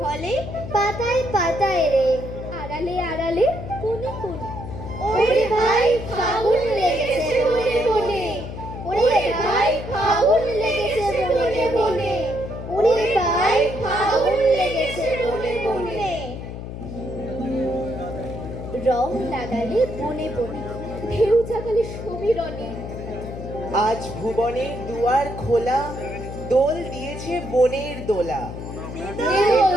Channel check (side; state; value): left; noise; hum, 9 dB below the sound